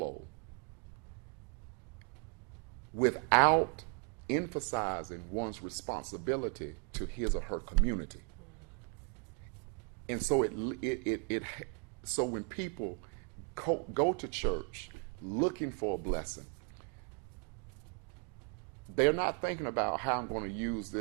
without emphasizing one's responsibility to his or her community. And so so when people go to church looking for a blessing, they're not thinking about how I'm going to use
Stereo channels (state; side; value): quieter; left; 38.1 dB